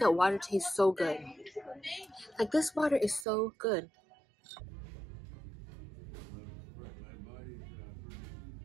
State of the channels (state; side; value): drops out; left; at 3.2 s